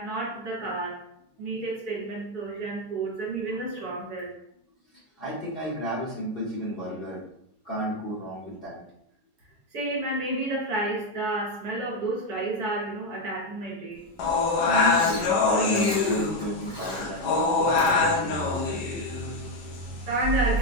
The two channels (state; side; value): normal; both; correlation 0.06